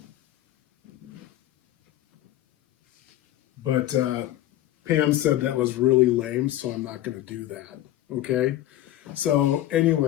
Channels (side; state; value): right; quieter; 13.8 dB